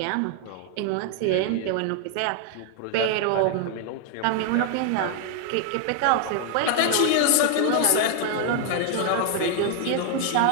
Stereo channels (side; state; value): both; different; correlation 0.00